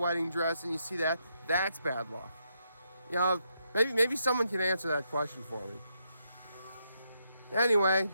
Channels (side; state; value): both; inverted; correlation -0.79